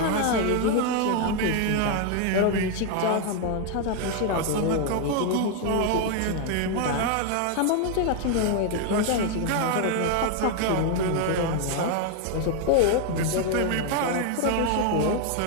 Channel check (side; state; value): both; different; correlation 0.00